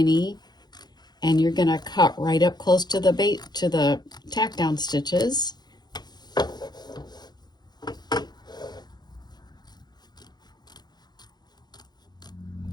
and you're going to cut right up close to the tack down stitches.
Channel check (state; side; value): late; right; 0.20 ms